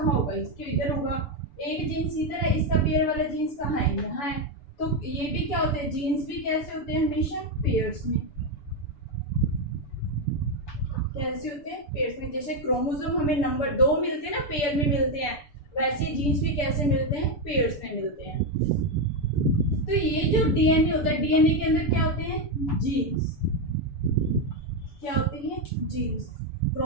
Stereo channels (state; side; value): late; right; 6.9 ms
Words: होगा? इसके इधर होगा. एक जीन्स इधर है, इसका पेयर वाला जीन्स कहाँ है? यहाँ है. तो ये भी क्या होते हैं? जीन्स भी कैसे होते हैं? हमेशा पेयर्स में. कैसे होते हैं? पेयर्स में. जैसे क्रोमोसोम हमें नंबर 2 मिलते हैं ना, पेयर में मिलते हैं, वैसे जीन्स भी कैसे मिलते हैं? पेयर्स में मिलते हैं. तो ये जो डीएनए होता है, डीएनए के अंदर क्या होते हैं? जीन्स. क्या होती है? जीन्स.